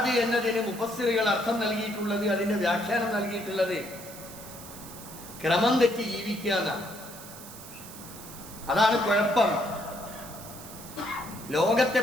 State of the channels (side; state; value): right; noise; hiss, 15 dB below the sound